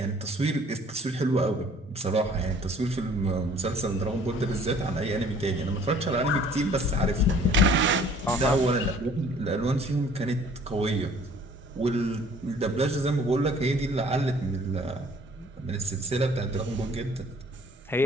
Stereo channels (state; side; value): normal; both; correlation 0.54